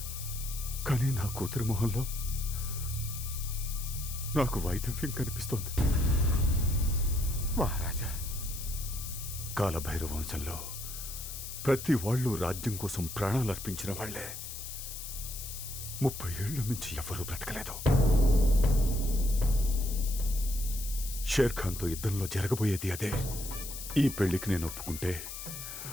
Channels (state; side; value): noise; left; hiss, 9 dB below the sound